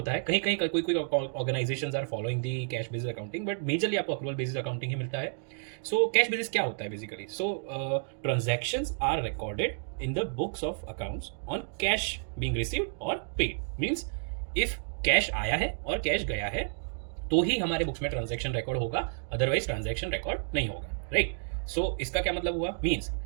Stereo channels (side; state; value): left; silent; digital silence